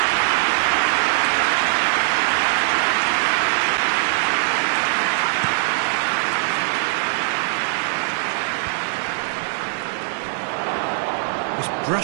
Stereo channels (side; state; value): left; silent; digital silence